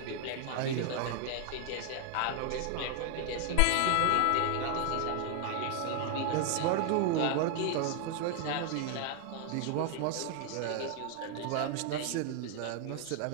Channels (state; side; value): different; both; correlation 0.00